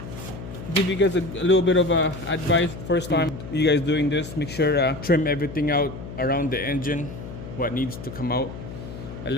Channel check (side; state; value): left; noise; hum, 11 dB below the sound